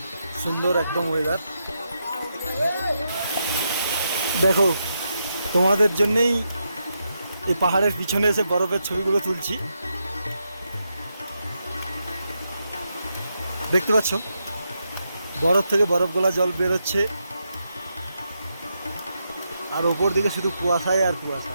সুন্দর একদম ওয়েদার। দেখো, তোমাদের জন্যেই এই পাহাড়ের পিছনে এসে বরফের ছবিগুলো তুলছি। দেখতে পাচ্ছ বরফ থেকে বরফ গোলা জল বেরোচ্ছে, আর ওপর দিকে শুধু কুয়াশায় আর কুয়াশা।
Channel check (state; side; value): inverted; both; correlation -0.83